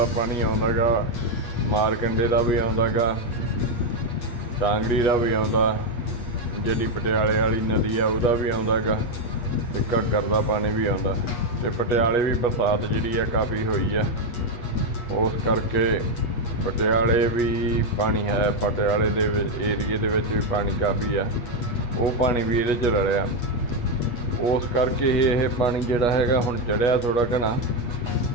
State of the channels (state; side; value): late; right; 8.4 ms